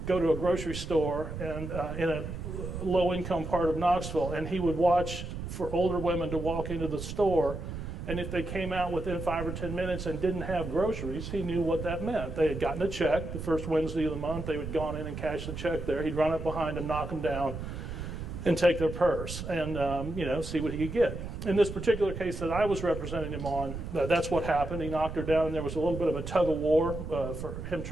go to a grocery store and in a low-income part of Knoxville, and he would watch for older women to walk into the store, and if they came out within 5 or 10 minutes and didn't have groceries, he knew what that meant. They had gotten a check the first Wednesday of the month. They had gone in and cashed the check there. He'd run up behind them, knock them down, and take their purse and see what he could get. In this particular case that I was representing him on, that's what happened. He knocked her down, and there was a little bit of a tug-of-war for him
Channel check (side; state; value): right; noise; rumble, 7 dB below the sound